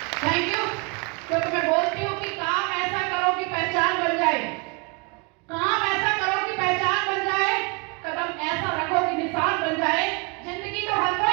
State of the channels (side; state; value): left; quieter; 31.7 dB